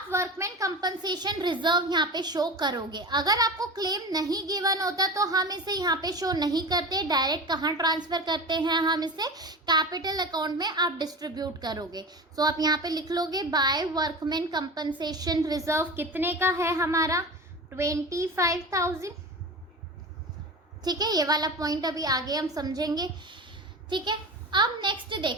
वर्कमैन कंपनसेशन रिजर्व यहाँ पे शो करोगे। अगर आपको क्लेम नहीं गिवन होता तो हम इसे यहाँ पे शो नहीं करते, डायरेक्ट कहाँ ट्रांसफर करते हैं, हम इसे कैपिटल अकाउंट में आप डिस्ट्रीब्यूट करोगे। सो आप यहाँ पे लिख लोगे बाय वर्कमैन कंपनसेशन रिजर्व कितने का है हमारा, 25,000, ठीक है। ये वाला पॉइंट अभी आगे हम समझेंगे, ठीक है। अब नेक्स्ट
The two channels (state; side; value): normal; both; correlation 0.30